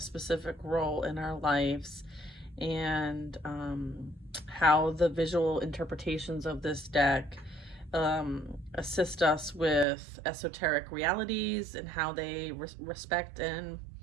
role in our lives, and how the visual interpretations of this deck assist us with esoteric realities, and how they respect and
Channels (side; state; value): left; drops out; at 9.9 s